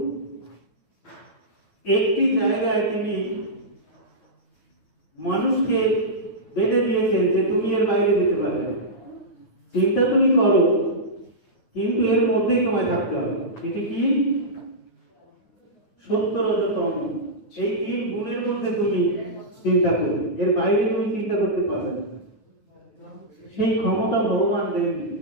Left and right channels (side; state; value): right; late; 9.3 ms